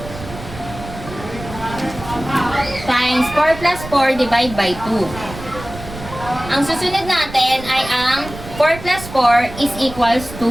times 4 plus 4 divide by 2. Ang susunod natin ay ang 4 plus 4 is equals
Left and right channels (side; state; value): right; noise; rumble, 13 dB below the sound